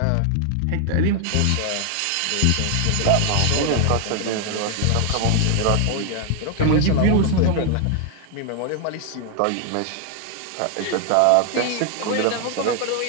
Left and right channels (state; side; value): different; both; correlation 0.00